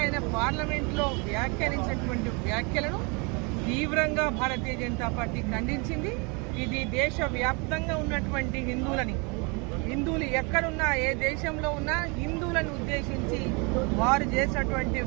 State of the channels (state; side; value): quieter; left; 31.2 dB